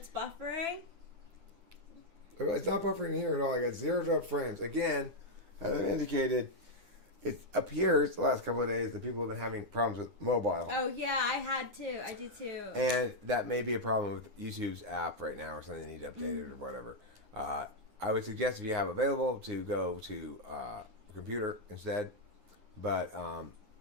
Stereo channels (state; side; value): late; left; 9.7 ms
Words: buffering? It's not buffering here at all. I got zeroed up frames. Again, as I indicated, it appears the last couple of days that people have been having problems with mobile. Oh, yeah, I did too. And that may be a problem with YouTube's app right now or something they need to update it or whatever. I would suggest if you have available to go to a computer instead. But all